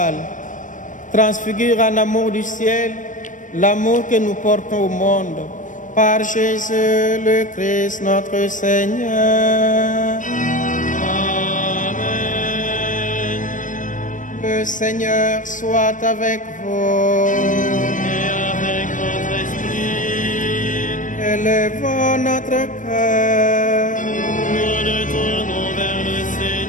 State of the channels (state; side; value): late; right; 0.37 ms